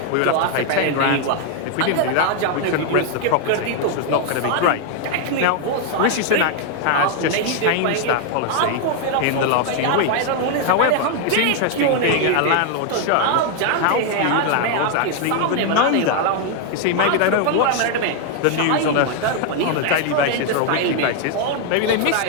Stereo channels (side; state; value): both; different; correlation 0.00